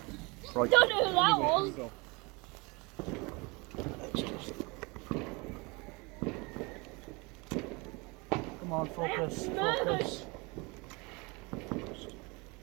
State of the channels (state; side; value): quieter; left; 27.1 dB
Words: Right. Don't know who that was. Go. Come on, focus, focus.